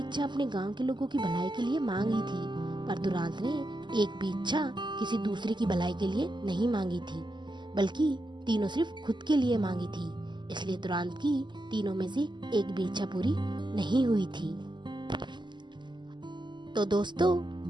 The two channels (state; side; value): late; left; 0.22 ms